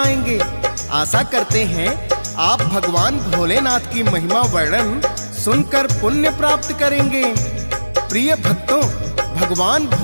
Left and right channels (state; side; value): inverted; both; correlation -1.00